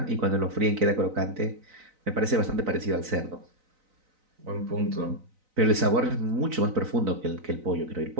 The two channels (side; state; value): left; late; 3.9 ms